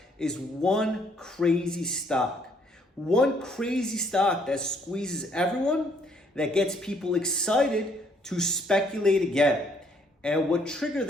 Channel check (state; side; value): normal; both; correlation 0.66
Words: is one crazy stock. One crazy stock that squeezes everyone, that gets people excited to speculate again. And what triggered